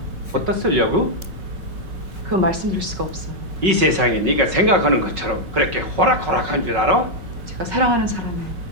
어디다 쓰려고? 그건 말씀드릴 수가 없어요. 이 세상이 네가 생각하는 것처럼 그렇게 호락호락한 줄 알아? 제가 사랑하는 사람의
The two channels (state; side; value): late; left; 5.4 ms